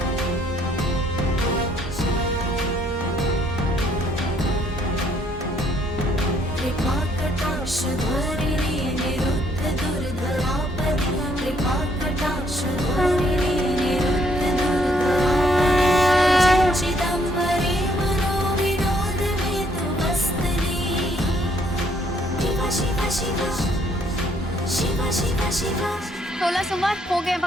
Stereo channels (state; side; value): normal; both; correlation 0.68